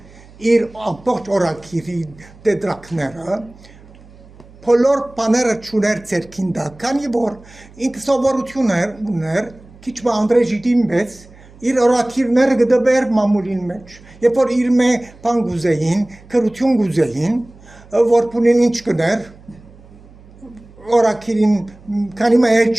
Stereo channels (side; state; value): right; noise; hum, 23 dB below the sound